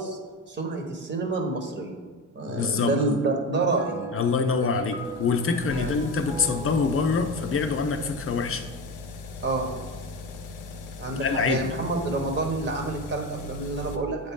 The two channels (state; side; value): normal; both; correlation 0.23